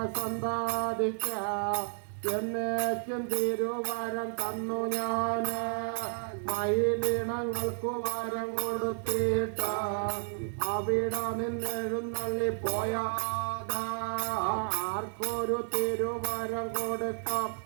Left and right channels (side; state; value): left; silent; 57 dB below the other